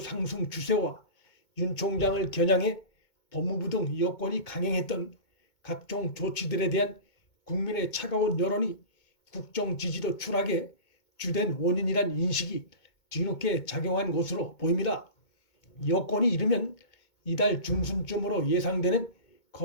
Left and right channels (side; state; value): right; late; 2.2 ms